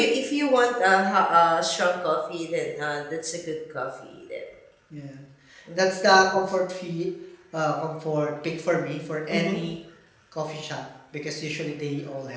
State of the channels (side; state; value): both; identical; correlation 1.00